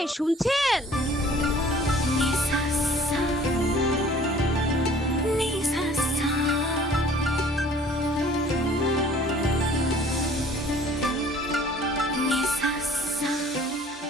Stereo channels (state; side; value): normal; both; correlation 0.52